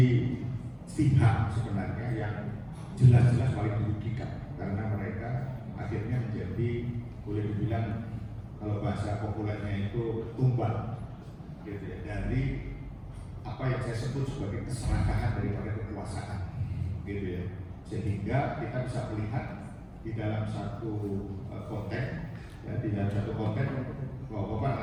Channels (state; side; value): identical; both; correlation 1.00